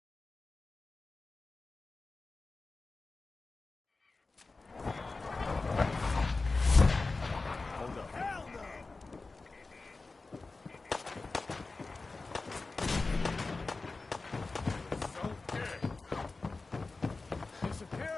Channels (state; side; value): quieter; right; 3.7 dB